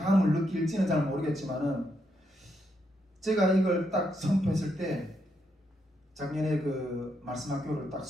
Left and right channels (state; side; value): normal; both; correlation 0.79